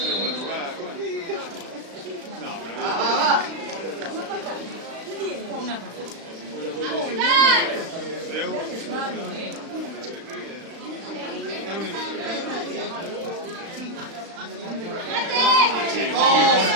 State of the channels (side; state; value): left; late; 35 ms